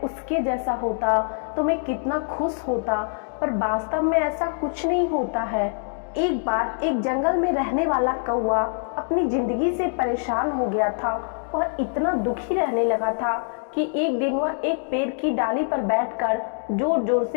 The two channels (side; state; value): right; silent; digital silence